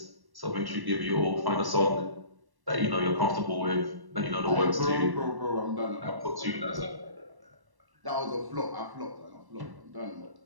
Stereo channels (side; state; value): left; late; 1.1 ms